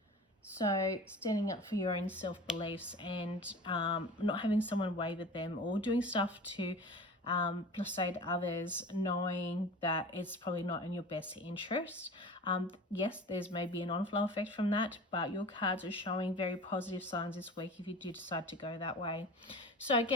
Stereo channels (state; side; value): normal; both; correlation 0.37